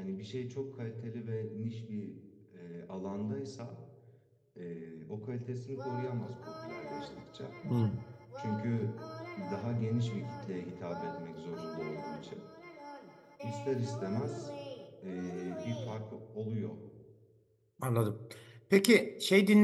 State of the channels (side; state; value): both; identical; correlation 1.00